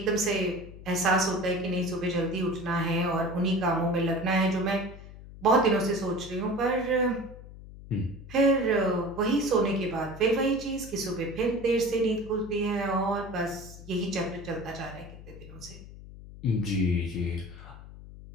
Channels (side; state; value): left; noise; hum, 16 dB below the sound